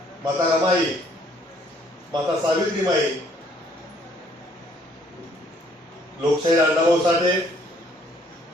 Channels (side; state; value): both; normal; correlation 0.63